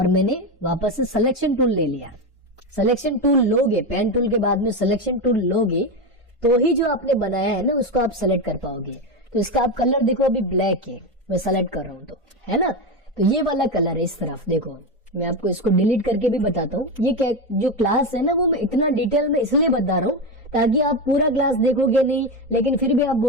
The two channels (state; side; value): normal; both; correlation 0.14